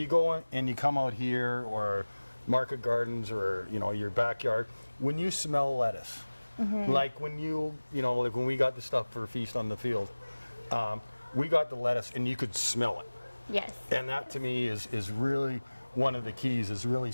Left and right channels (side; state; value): both; inverted; correlation -1.00